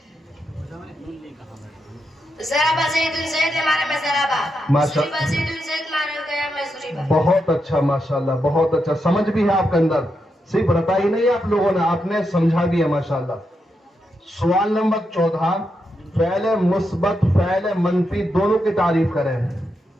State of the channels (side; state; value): both; normal; correlation 0.84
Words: ضرب زید زید معنی میں ضربا, ضرب زید زید معنی گیا میں ضربا. بہت اچھا ماشاءاللہ بہت اچھا. سمجھ بھی ہے آپ کے اندر, صرف رٹا ہی نہیں آپ لوگوں نے, آپ نے سمجھا بھی ہے ماشاءاللہ. سوال نمبر 14 فعل مثبت فعل منفی دونوں کی تعریف کریں.